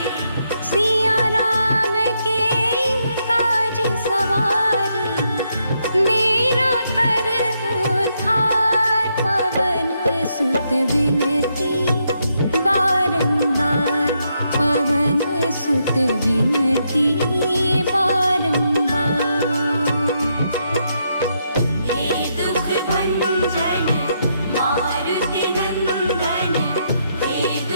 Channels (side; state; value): both; inverted; correlation -0.78